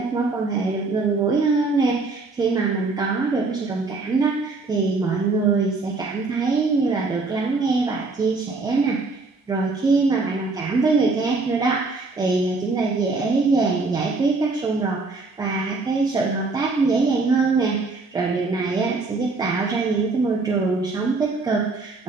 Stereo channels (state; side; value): quieter; left; 3.7 dB